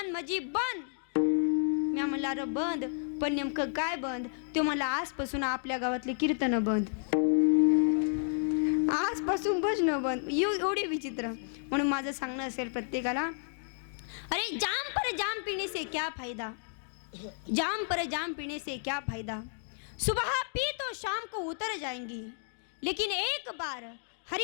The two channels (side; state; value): right; silent; digital silence